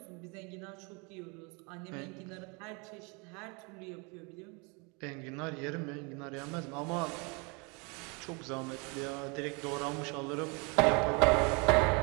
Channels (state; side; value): quieter; left; 31.2 dB